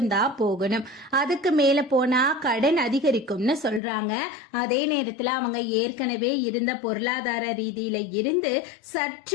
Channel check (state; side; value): drops out; right; at 3.8 s